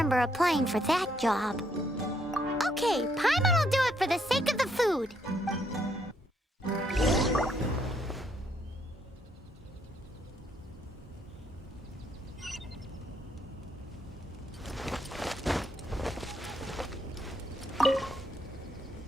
applying for that job. Okay, Paimon will do it for the sake of the food.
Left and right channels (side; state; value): both; normal; correlation 0.73